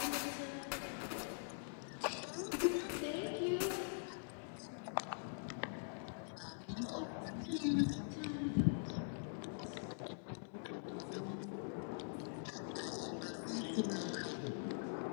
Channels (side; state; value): right; silent; digital silence